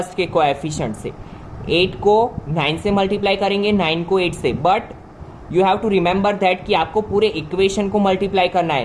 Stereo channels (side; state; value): both; identical; correlation 1.00